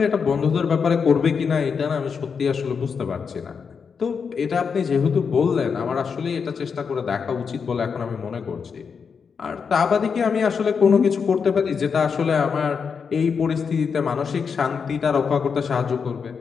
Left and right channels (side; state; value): right; quieter; 6.0 dB